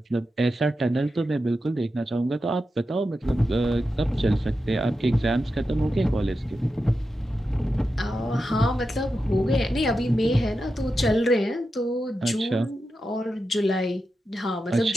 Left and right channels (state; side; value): normal; both; correlation 0.89